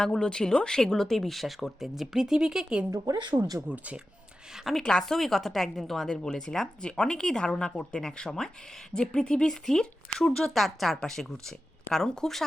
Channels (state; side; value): normal; both; correlation 0.93